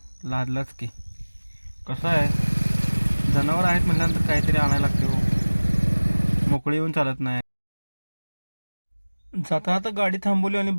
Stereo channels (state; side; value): inverted; both; correlation -1.00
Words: लादलाच की. कसं आहे, जनावर आहेत म्हटल्यानंतर काहीतरी आणायला लागते हो, मोकळी येऊन चालत नाही. जाता आता गाडी थांबवली आणि